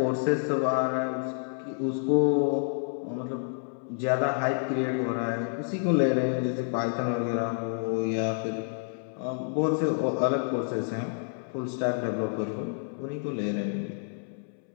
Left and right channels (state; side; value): silent; right; 59 dB below the other